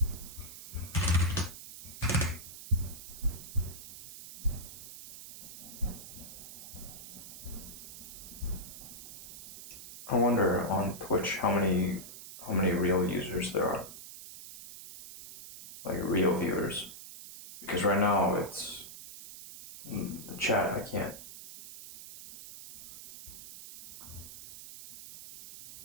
I wonder on Twitch how many real users there are. Like real viewers. Because right now it's the chat, I can't.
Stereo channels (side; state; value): right; noise; hiss, 13 dB below the sound